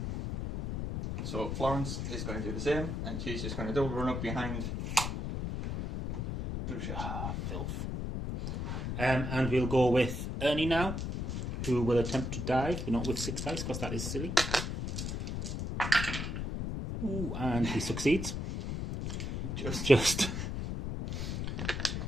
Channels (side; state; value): left; noise; rumble, 3 dB below the sound